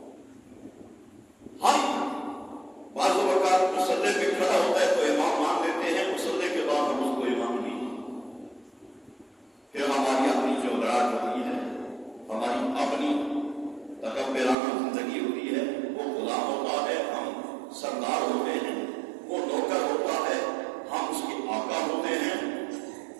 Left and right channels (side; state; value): left; drops out; at 14.6 s